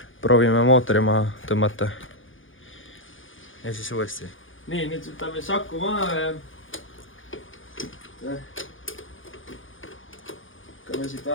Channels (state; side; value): late; right; 0.58 ms